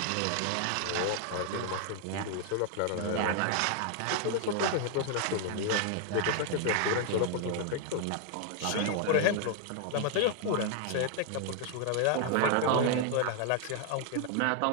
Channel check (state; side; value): different; both; correlation 0.00